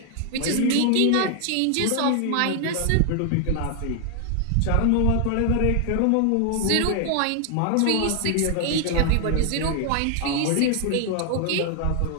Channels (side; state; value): both; different; correlation 0.00